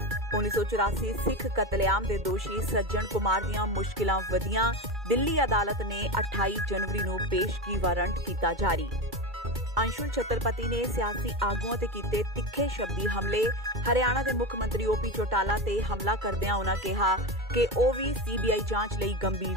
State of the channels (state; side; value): normal; both; correlation 0.20